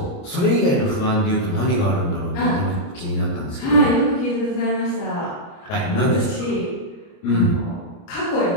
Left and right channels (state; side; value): late; right; 29 ms